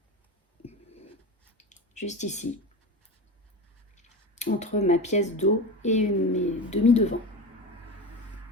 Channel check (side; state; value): both; normal; correlation 0.25